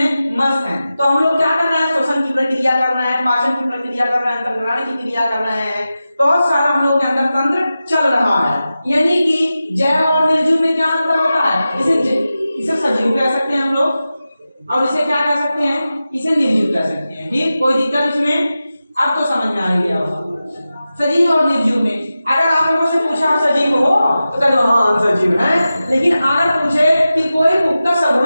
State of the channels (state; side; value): inverted; both; correlation -0.93